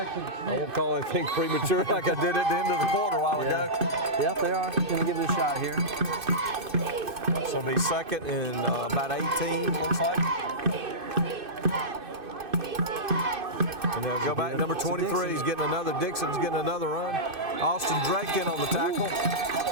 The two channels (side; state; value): left; late; 2.5 ms